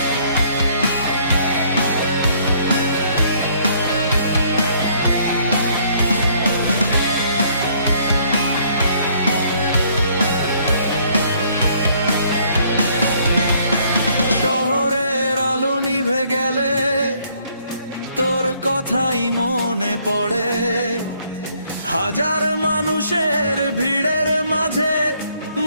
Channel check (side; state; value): both; inverted; correlation -0.64